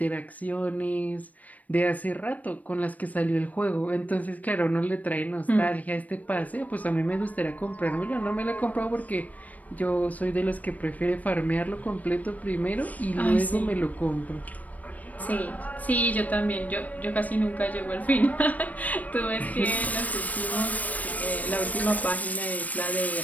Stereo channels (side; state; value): right; late; 0.073 ms